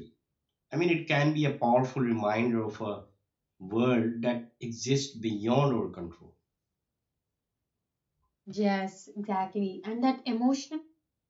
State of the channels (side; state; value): both; identical; correlation 1.00